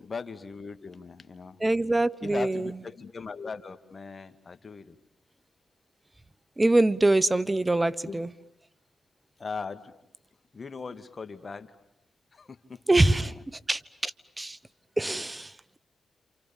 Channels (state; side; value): normal; both; correlation 0.98